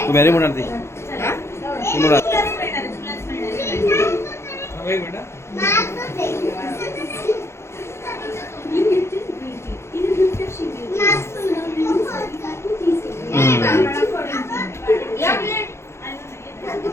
मॅरी म्हणणार ती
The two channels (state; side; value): late; right; 0.13 ms